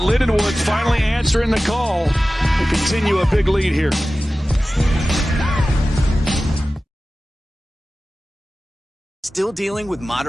finally answering the call to continue a big lead here. Still dealing with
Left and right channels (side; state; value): both; normal; correlation 0.96